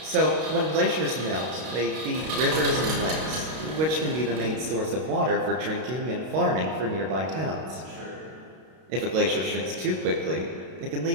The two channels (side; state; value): left; late; 32 ms